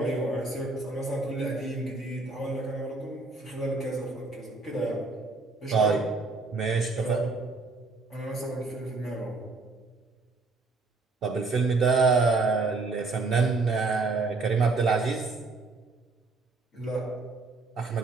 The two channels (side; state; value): left; quieter; 3.7 dB